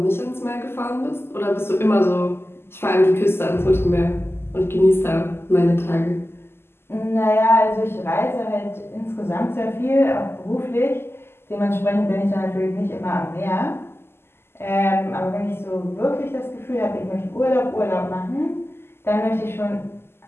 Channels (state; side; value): late; right; 0.12 ms